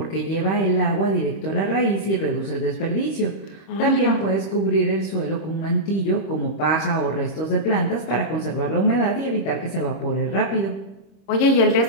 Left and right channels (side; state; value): right; late; 26 ms